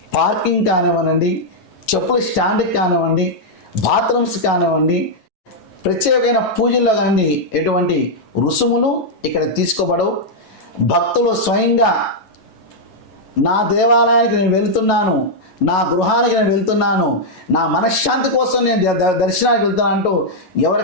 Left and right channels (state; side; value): late; right; 9.2 ms